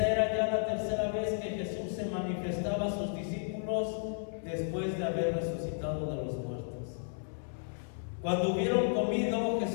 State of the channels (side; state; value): right; silent; 56 dB below the other